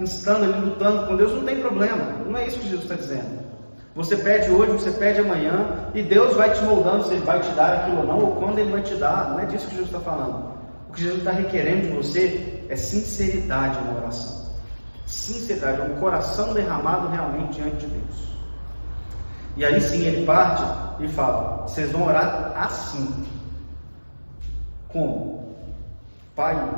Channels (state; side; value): inverted; both; correlation -1.00